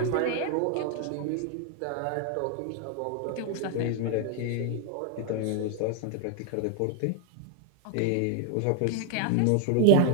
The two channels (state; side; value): different; both; correlation 0.00